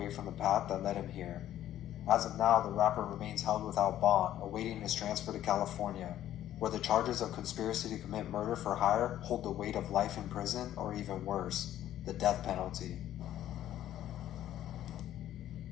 from the path that led him here. As of now, the rapper remains held without bond, awaiting his transfer to California, where the charges of conspiracy to commit murder for hire hold the weight of life in prison, or even worse, the death penalty.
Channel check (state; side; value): quieter; right; 12.2 dB